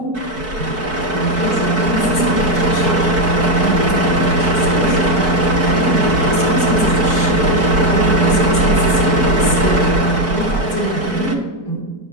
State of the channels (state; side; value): late; left; 4.6 ms